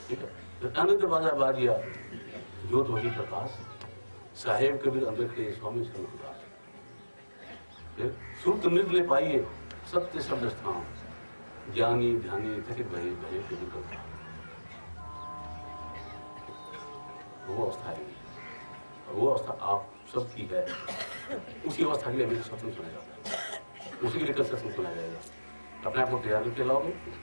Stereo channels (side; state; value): both; inverted; correlation -1.00